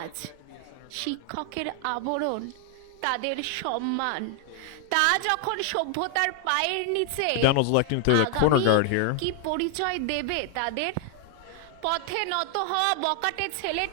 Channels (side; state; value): both; different; correlation 0.00